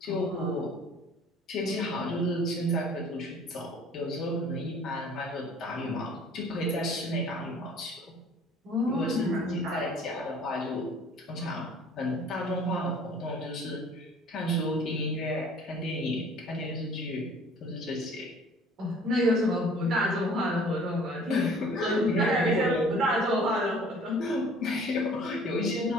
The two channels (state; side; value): normal; both; correlation 0.51